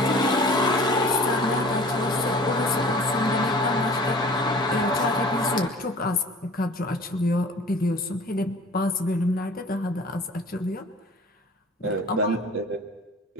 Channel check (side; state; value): both; normal; correlation 0.46